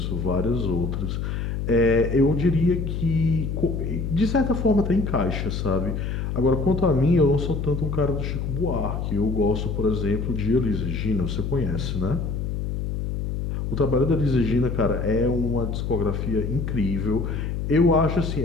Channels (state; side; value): noise; left; hum, 3 dB below the sound